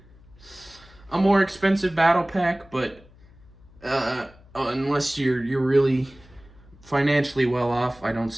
a more expensive battle pack, but unless you're really financially well off, I don't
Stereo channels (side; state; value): left; noise; hum, 25 dB below the sound